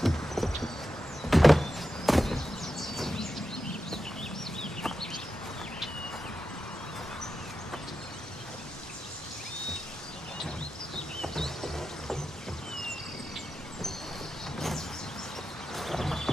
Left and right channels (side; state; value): both; normal; correlation 0.90